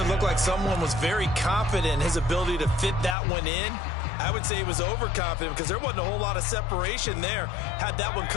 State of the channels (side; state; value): right; drops out; at 3.2 s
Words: looked like someone was very confident in his ability to fit that one in. I would say he was overconfident because there wasn't a whole lot of separation there. Had that one